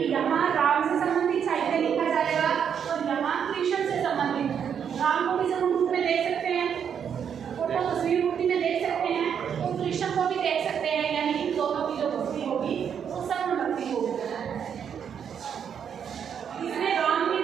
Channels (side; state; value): left; quieter; 7.9 dB